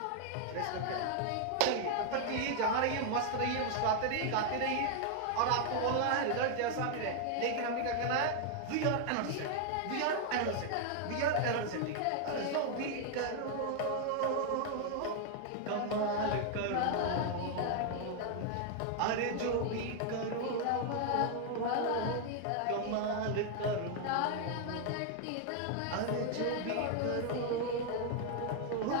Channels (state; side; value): different; both; correlation 0.00